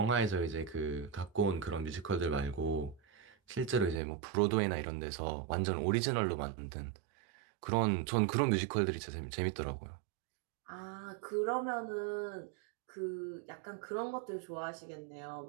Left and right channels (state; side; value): drops out; left; at 4.0 s